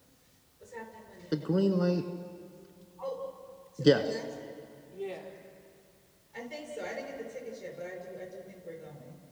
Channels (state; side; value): identical; both; correlation 1.00